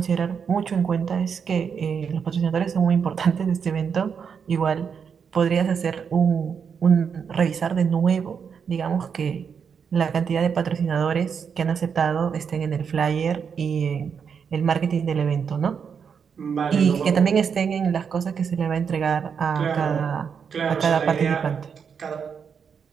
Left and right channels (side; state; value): left; quieter; 6.7 dB